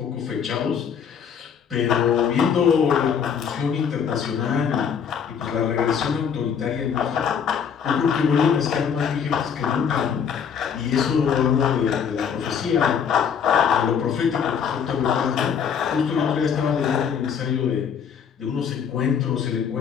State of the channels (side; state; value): right; quieter; 7.3 dB